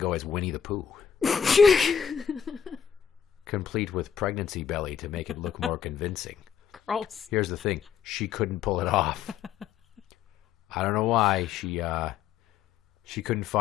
as Winnie the Pooh. Complete with pregnancy belly to make it look more convincing. Gross. Here's the thing. She couldn't pull it off. I don't know why. She couldn't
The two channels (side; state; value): right; quieter; 7.8 dB